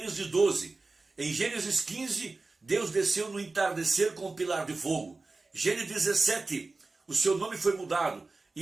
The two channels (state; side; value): quieter; left; 3.6 dB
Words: 12, em Gênesis 15, Deus desceu no entardecer com um pilar de fogo. Gênesis 17, o seu nome foi mudado